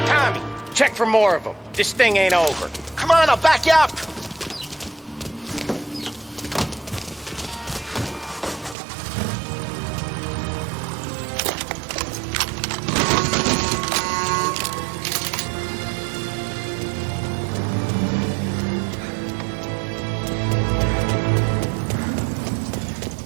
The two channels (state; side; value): drops out; left; at 8.8 s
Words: Tommy, check for more of them. This thing ain't over. Come on, I'll back you up.